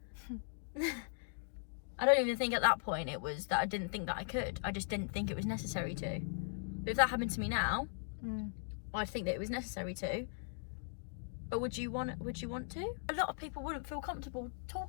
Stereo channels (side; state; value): right; silent; digital silence